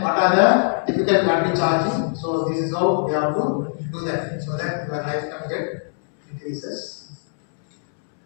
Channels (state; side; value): silent; right; 64 dB below the other